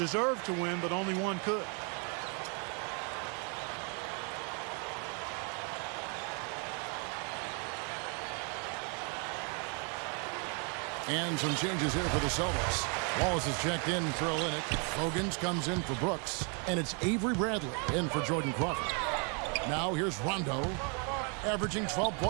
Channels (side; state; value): left; quieter; 37.5 dB